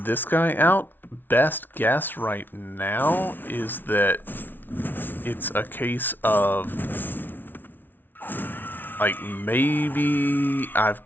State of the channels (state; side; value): late; right; 0.092 ms